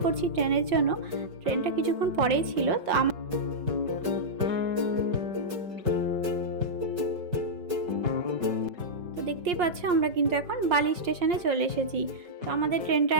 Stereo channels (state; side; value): late; left; 5.3 ms